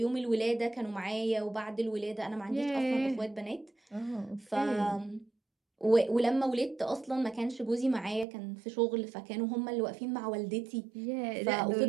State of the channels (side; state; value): left; drops out; at 8.2 s